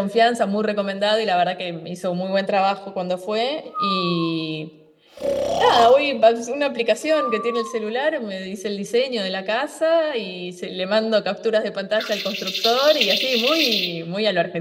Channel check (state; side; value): identical; both; correlation 1.00